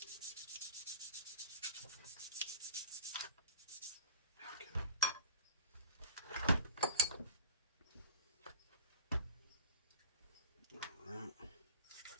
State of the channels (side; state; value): both; inverted; correlation -0.37